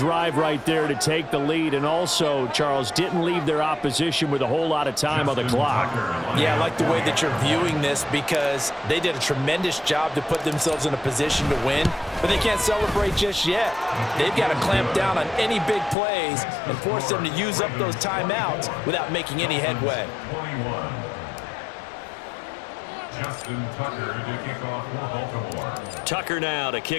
right there to take the lead. And also, Charles, didn't leave their opposition with a whole lot of time on the clock. Yeah, I like the way that you're viewing this because they did a tremendous job to put themselves in a position to win, but they can't celebrate just yet. They've got to clamp down on any big plays and force them to use up those timeouts without making any headway. Justin Tucker to kick off for Baltimore. Tucker now to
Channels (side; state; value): right; drops out; at 16.0 s